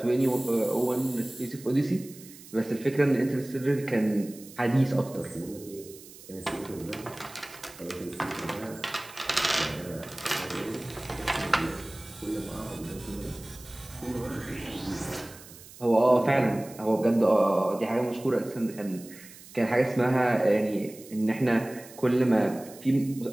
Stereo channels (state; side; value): noise; right; hiss, 19 dB below the sound